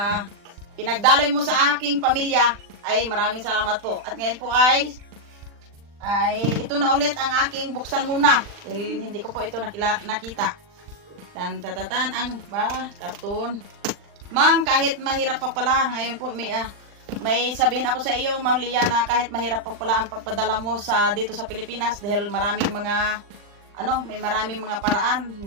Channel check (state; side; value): late; left; 40 ms